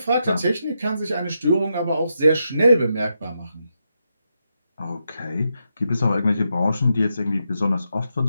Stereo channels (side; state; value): both; inverted; correlation -0.84